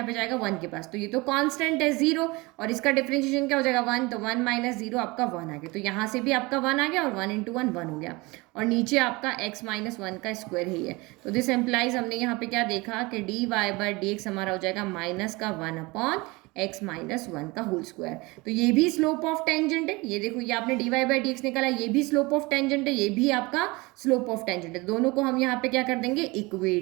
पे जाएगा 1 के पास। तो ये तो कांस्टेंट है 0 और इसका डिफरेंशिएशन क्या हो जाएगा, 1। तो 1 माइनस 0 आपका 1 आ गया। तो यहाँ से भी आपका 1 आ गया और 1 इंटू 1 1 हो गया और नीचे आपका x माइनस 1 का स्क्वायर ही है। तो दिस एम्प्लाइज, हमने यहाँ पे क्या देखा कि dy/dx हमारा हो जाएगा माइनस का 1 अपॉन x माइनस 1 का होल स्क्वायर। तो ये भी स्लोप ऑफ टेंजेंट है। ये देखो, ये आपने dy/dx निकाला, ये भी स्लोप ऑफ टेंजेंट है, ये भी आपका स्लोप ऑफ टेंजेंट है। दोनों को हम यहाँ पे क्या कर देंगे,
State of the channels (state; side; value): quieter; left; 24.0 dB